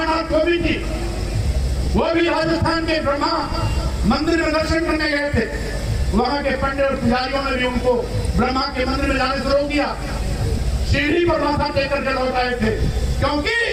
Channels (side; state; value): both; identical; correlation 1.00